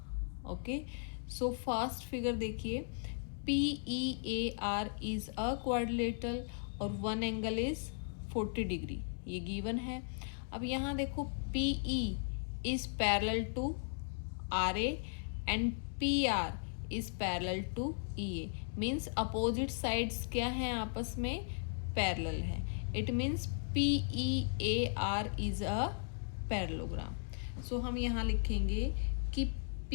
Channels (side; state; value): right; silent; digital silence